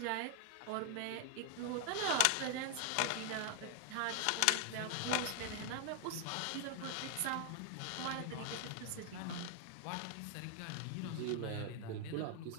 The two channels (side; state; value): both; different; correlation 0.00